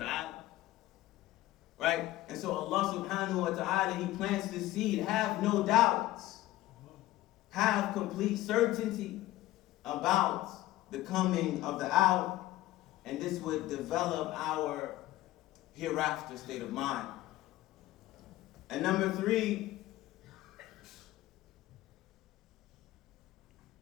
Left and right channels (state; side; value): quieter; right; 16.2 dB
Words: Right? And so Allah subhanahu wa ta'ala, He plants the seed. Have no doubts. Have complete certainty about the coming of the hour. And this would develop our hereafter state of mind. And number 3,